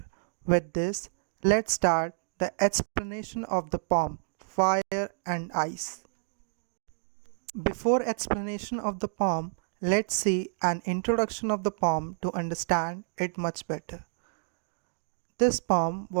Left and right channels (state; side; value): silent; left; digital silence